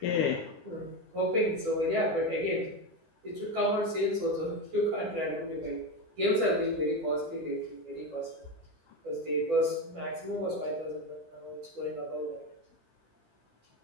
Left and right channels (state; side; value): late; left; 12 ms